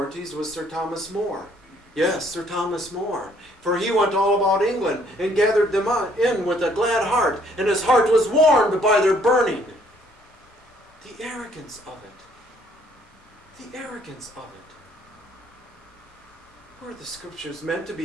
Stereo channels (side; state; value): both; normal; correlation 0.64